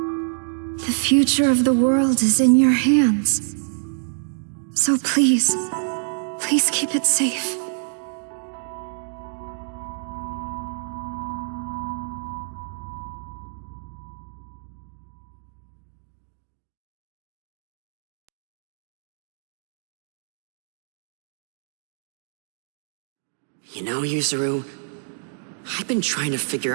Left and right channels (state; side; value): silent; left; digital silence